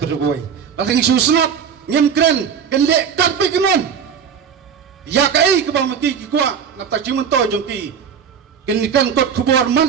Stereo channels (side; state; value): left; quieter; 7.4 dB